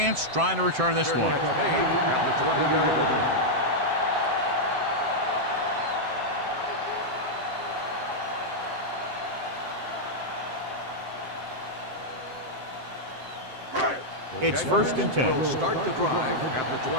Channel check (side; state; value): left; late; 7.6 ms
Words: trying to return this one. Catch made at the 20-yard line. It's first and 10. Will start the drive at the